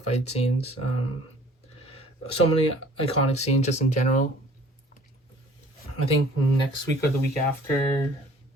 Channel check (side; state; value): both; normal; correlation 0.52